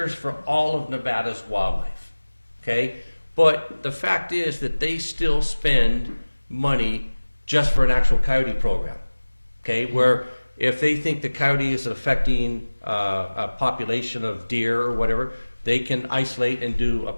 for all of Nevada's wildlife, okay? But the fact is that they still spend money just for an actual coyote program, okay? Where if they think the coyote is affecting a population of deer or whatever, they can isolate and do a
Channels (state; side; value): inverted; both; correlation -1.00